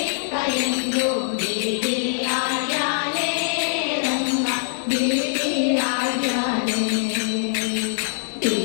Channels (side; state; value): right; silent; digital silence